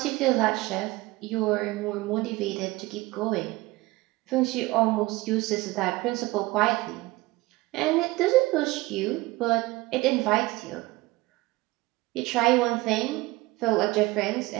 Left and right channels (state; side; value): quieter; left; 20.5 dB